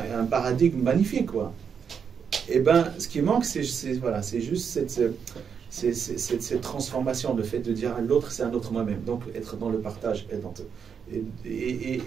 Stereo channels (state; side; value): quieter; left; 6.9 dB